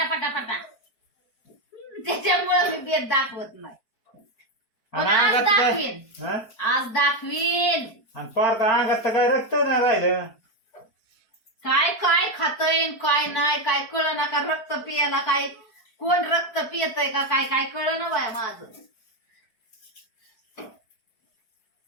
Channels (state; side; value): late; right; 4.5 ms